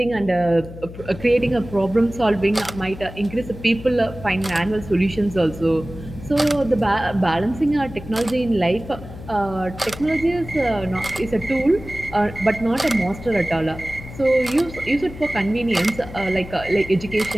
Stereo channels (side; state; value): left; noise; hum, 14 dB below the sound